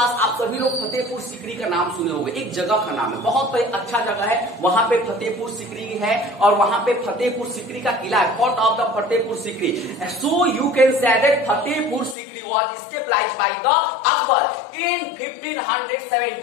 आप सभी लोग फतेहपुर सीकरी का नाम सुने होंगे, एक जगह का नाम है, बहुत अच्छा जगह है, वहां पे फतेहपुर सीकरी है और वहां पे फतेहपुर सीकरी का किला है, fort of the Fatehpur Sikri. So you can say that Fatehpur Sikri was stabilized by the Akbar in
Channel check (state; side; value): drops out; right; at 12.2 s